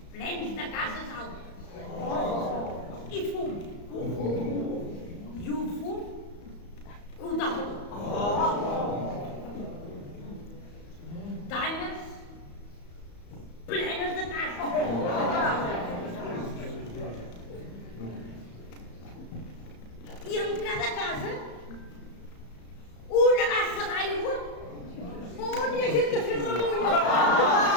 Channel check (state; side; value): late; right; 34 ms